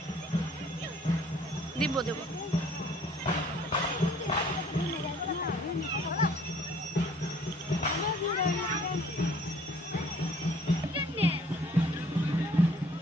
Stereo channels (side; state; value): both; normal; correlation 0.57